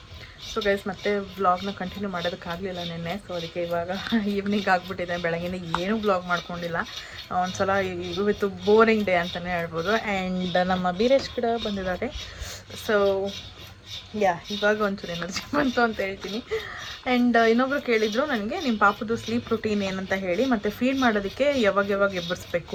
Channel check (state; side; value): identical; both; correlation 1.00